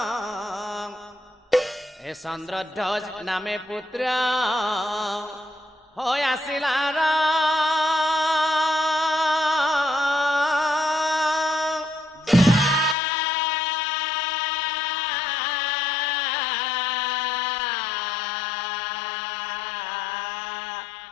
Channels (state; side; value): drops out; right; at 13.0 s